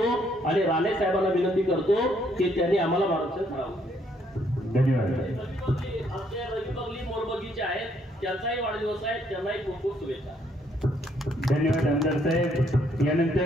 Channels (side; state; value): both; normal; correlation 0.69